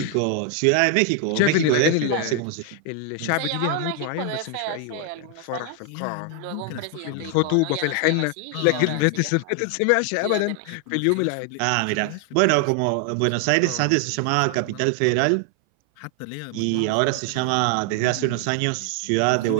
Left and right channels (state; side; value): different; both; correlation 0.00